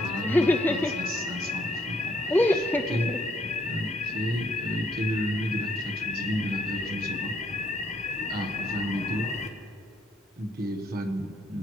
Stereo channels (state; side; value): normal; both; correlation 0.69